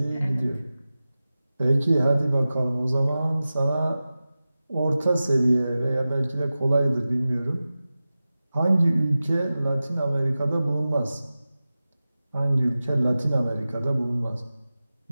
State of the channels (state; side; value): inverted; both; correlation -0.95